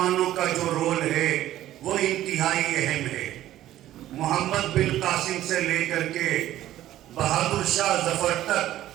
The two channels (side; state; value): left; quieter; 13.6 dB